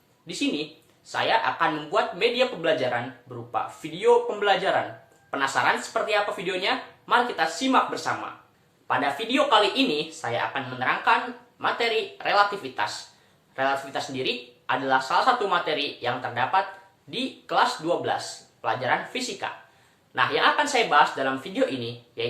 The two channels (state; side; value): identical; both; correlation 1.00